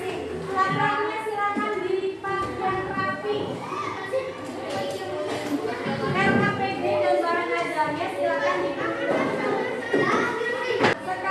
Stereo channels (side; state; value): both; identical; correlation 1.00